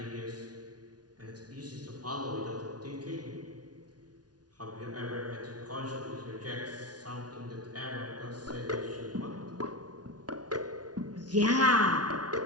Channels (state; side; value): late; left; 0.69 ms